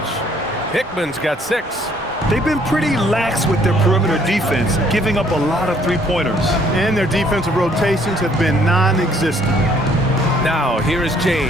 Hickman's got 6. They've been pretty lax with their perimeter defense, giving up a lot of three-pointers. And their defensive rotations have been non-existent. Now, here is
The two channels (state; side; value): normal; both; correlation 0.63